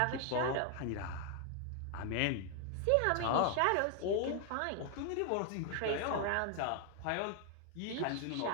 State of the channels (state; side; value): different; both; correlation 0.00